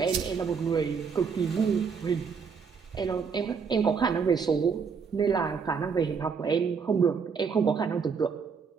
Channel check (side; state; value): left; quieter; 5.9 dB